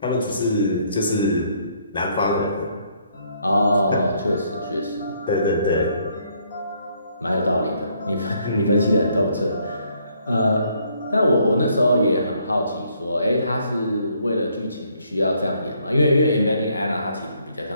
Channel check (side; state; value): both; inverted; correlation -0.69